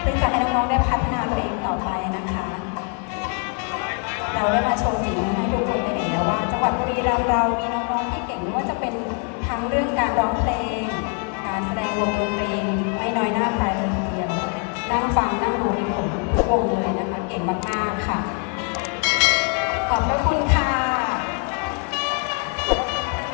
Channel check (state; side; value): quieter; right; 38.9 dB